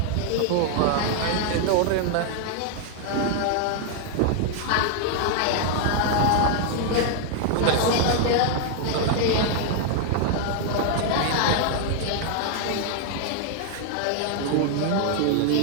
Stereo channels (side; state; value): both; different; correlation 0.00